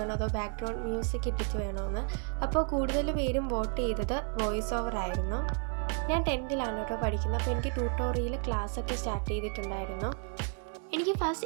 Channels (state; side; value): quieter; left; 39.7 dB